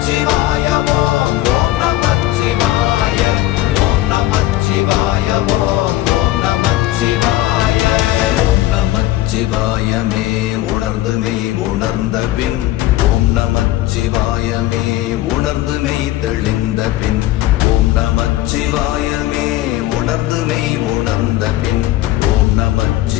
ஓம் ஓம் நமச்சிவாய ஓம் நமச்சிவாய ஓம் ஓம் நமச்சிவாய. ஓம் நமச்சிவாயமே உணர்ந்துமே உணர்ந்த பின் ஓம் நமச்சிவாயமே உணர்ந்துமே தெளிந்த பின் ஓம் நமச்சிவாயமே உணர்ந்துமே உணர்ந்த பின் ஓம்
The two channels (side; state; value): right; quieter; 15.8 dB